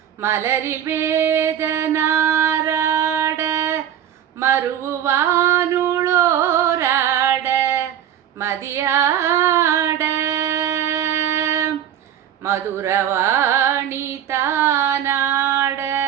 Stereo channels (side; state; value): left; quieter; 10.3 dB